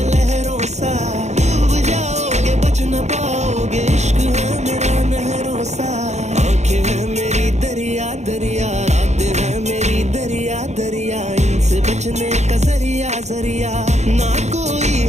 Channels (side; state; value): left; late; 0.33 ms